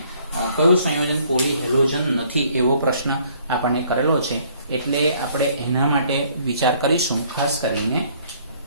કયું સંયોજન પોલીહેલોજન નથી એવો પ્રશ્ન આપણને કરેલો છે, એટલે આપણે એના માટે વિચાર કરીશું. ખાસ કરીને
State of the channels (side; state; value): both; inverted; correlation -0.61